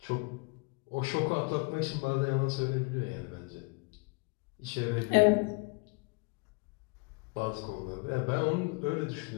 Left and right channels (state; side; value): quieter; right; 29.9 dB